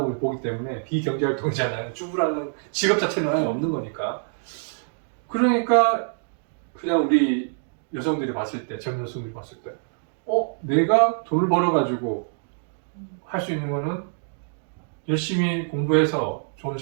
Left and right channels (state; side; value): silent; left; digital silence